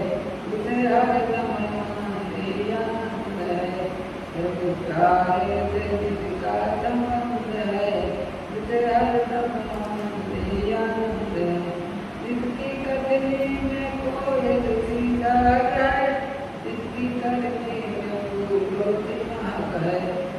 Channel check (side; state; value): both; identical; correlation 1.00